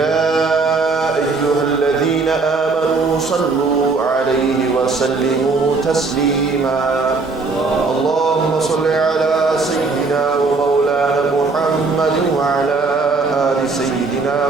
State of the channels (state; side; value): quieter; left; 4.1 dB